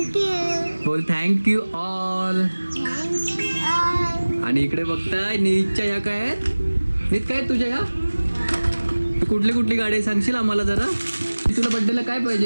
बोल थँक्यू ऑल. आणि इकडे बघताय निहितच्या ह्या काय आहेत? निहित काय आहेत तुझ्या ह्या? कुठली कुठली गाडी आहे सांगशील आम्हाला जरा? तुला बड्डेला काय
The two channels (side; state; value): both; inverted; correlation -1.00